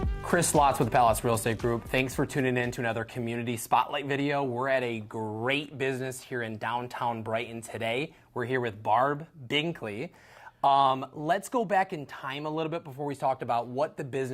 Chris Slotz with the Palace Real Estate Group. Thanks for tuning in to another community spotlight video. We're at a great business here in downtown Brighton today. We're here with Barb Binkley. Let's go back in time a little bit before we talked about what the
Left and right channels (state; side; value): identical; both; correlation 1.00